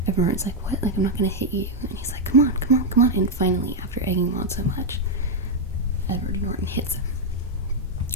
everyone's like, what? Like, I'm not gonna hit you. And he's like, come on. And finally, after egging him on so much, Edward Norton hits him.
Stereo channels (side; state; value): both; normal; correlation 0.00